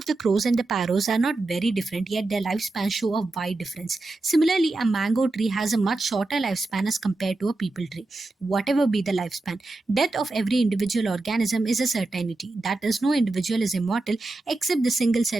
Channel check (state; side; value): quieter; left; 3.0 dB